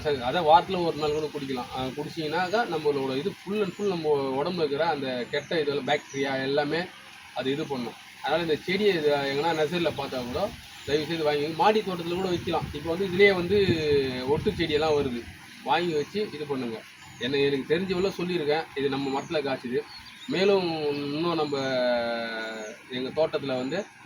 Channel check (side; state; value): both; identical; correlation 1.00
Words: அதான் வாரத்தில் ஒரு நாள் கூட குடிக்கலாம். குடிச்சிங்கன்னாக்கா நம்மளோட இது ஃபுல் அண்ட் ஃபுல் நம்ம உடம்புல இருக்கிற அந்த கெட்ட இதெல்லாம் பாக்டீரியா எல்லாமே அது இது பண்ணும். அதனால் இந்த செடியை இது எங்கன்னா நர்சரியில் பார்த்தா கூட தயவுசெய்து வாங்கி மாடி தோட்டத்தில் கூட வைக்கலாம். இப்போ வந்து இதுலேயே வந்து ஒட்டு செடியெல்லாம் வருது. வாங்கி வச்சு இது பண்ணுங்கள். எனக்கு தெரிஞ்சவளோ சொல்லியிருக்கேன். இது நம்ம மரத்தில் காய்ச்சிது. மேலும் இன்னும் நம்ம எங்கள் தோட்டத்தில் வந்து